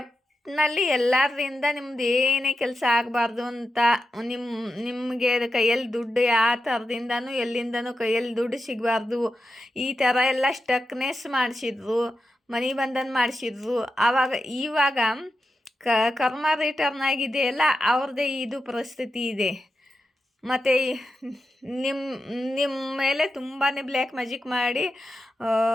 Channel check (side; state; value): both; normal; correlation 0.89